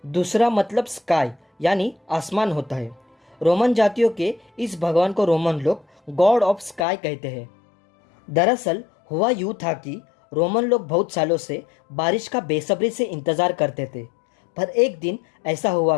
दूसरा मतलब स्काई यानी आसमान होता है। रोमन जातियों के इस भगवान को रोमन लोग गॉड ऑफ स्काई कहते हैं। दरअसल हुआ यूं था कि रोमन लोग बहुत सालों से बारिश का बेसब्री से इंतजार करते थे, पर एक दिन ऐसा हुआ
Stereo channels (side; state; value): right; drops out; at 6.9 s